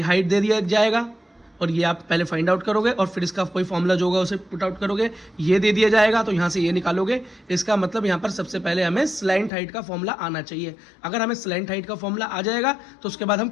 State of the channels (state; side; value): drops out; right; at 9.5 s